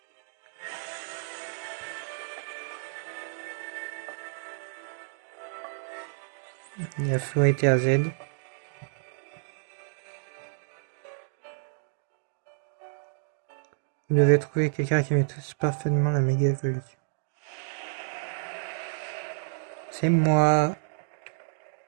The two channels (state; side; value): silent; left; digital silence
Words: Il y a Floette et AZ. Vous devez trouver quelqu'un qui maîtrise parfaitement la méga évolution. C'est moi.